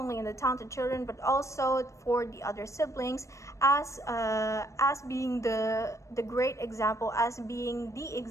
in the talented children, but also for the other siblings, as being the great example, as being the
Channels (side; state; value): right; late; 0.15 ms